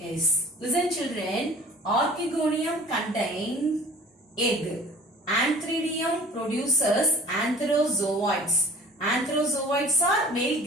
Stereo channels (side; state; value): both; normal; correlation 0.48